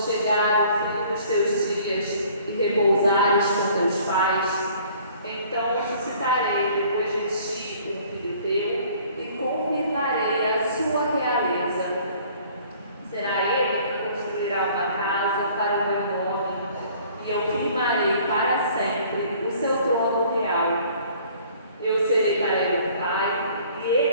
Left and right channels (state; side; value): inverted; both; correlation -0.55